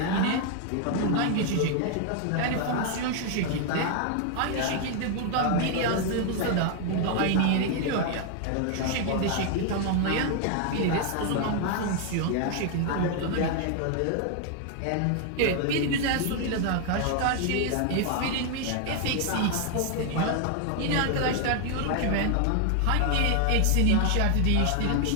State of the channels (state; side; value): different; both; correlation 0.00